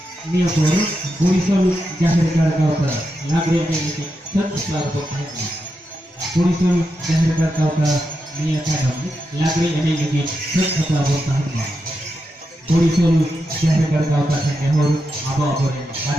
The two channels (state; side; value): normal; both; correlation 0.86